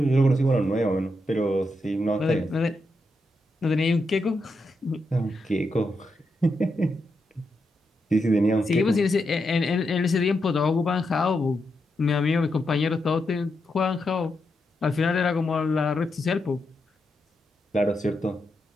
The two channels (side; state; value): both; normal; correlation 0.84